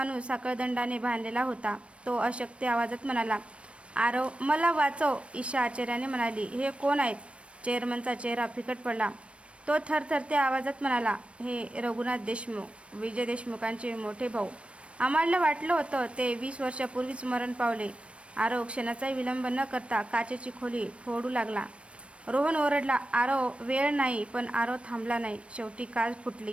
साखळदंडाने बांधलेला होता. तो अशक्त आवाजात म्हणाला, आरव मला वाचव. ईशा आश्चर्याने म्हणाली, हे कोण आहेत? चेअरमनचा चेहरा फिकट पडला. तो थरथरत्या आवाजात म्हणाला, हे रघुनाथ देशमुख, विजय देशमुखांचे मोठे भाऊ. आम्हाला वाटलं होतं ते 20 वर्षापूर्वीच मरण पावले. आरव क्षणाचाही विलंब न करता काचेची खोली फोडू लागला. रोहन ओरडला, आरव वेळ नाही. पण आरव थांबला नाही. शेवटी काच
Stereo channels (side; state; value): left; late; 0.060 ms